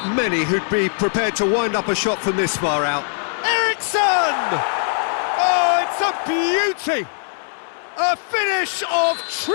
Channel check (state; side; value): silent; right; 65 dB below the other